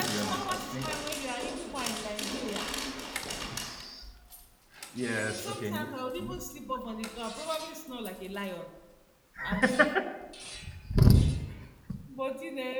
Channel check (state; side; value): identical; both; correlation 1.00